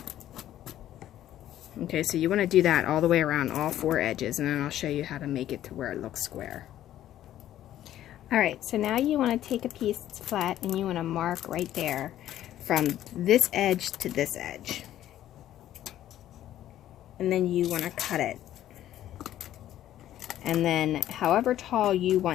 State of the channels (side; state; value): right; quieter; 12.4 dB